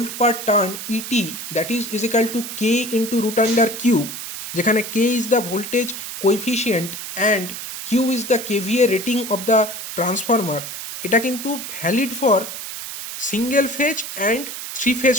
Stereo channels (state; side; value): noise; right; hiss, 8 dB below the sound